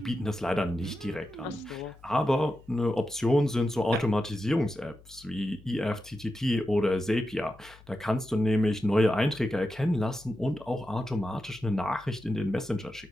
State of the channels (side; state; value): left; noise; hum, 24 dB below the sound